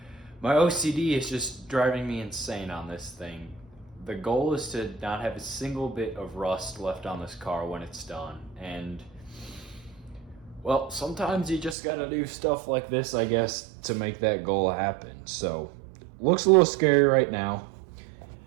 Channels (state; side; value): drops out; left; at 11.8 s